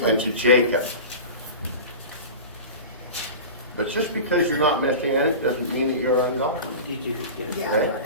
and to Jacob. But just because you're not Messianic doesn't mean that you're ungodly. Did you get it? Yeah, I Okay. got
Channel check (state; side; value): inverted; both; correlation -0.32